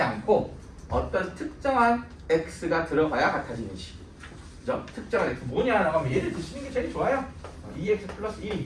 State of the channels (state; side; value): identical; both; correlation 1.00